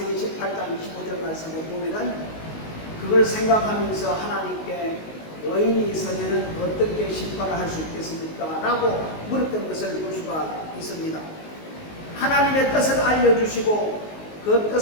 18장 25절 말씀을 보면은 그걸 생각하면서 하나님께 의인이 있으면 어떻게 심판을 할 수 있겠습니까? 라고 물었던 것을 볼 수가 있습니다. 하나님의 뜻을 알려주시고 그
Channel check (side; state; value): right; late; 19 ms